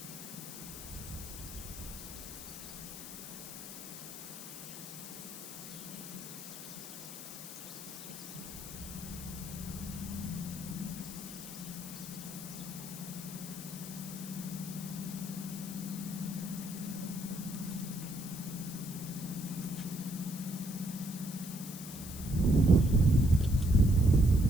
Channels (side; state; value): left; noise; hiss, 10 dB below the sound